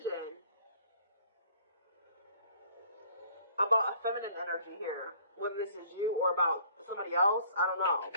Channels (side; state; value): both; inverted; correlation -0.56